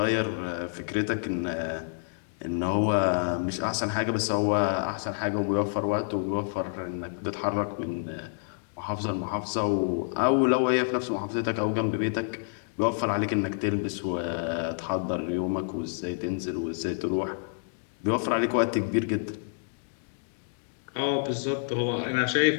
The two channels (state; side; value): silent; right; digital silence